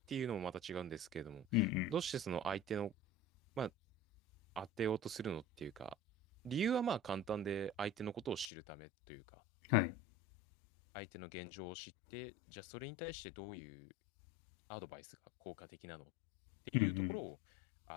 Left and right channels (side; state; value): right; drops out; at 8.5 s